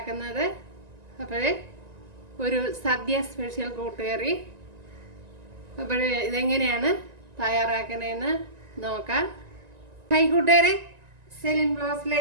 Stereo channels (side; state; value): left; late; 1.9 ms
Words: അപ്പോൾ ഒരു സദ്യ സ്പെഷ്യൽ കൂട്ടുകറി. അപ്പോൾ ഇതെങ്ങനെയാണ് തയ്യാറാക്കുന്നതെന്ന് നോക്കാം. കൂട്ടുകാരെ, സെലിൻ